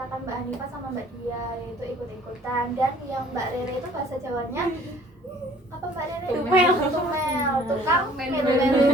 Mbak Hanifah sama Mbak Dia, yaitu ikut-ikutan. Dan yang Mbak Rere itu bahasa Jawanya apa Mbak Rere? Tumel, tukang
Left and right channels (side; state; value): both; normal; correlation 0.54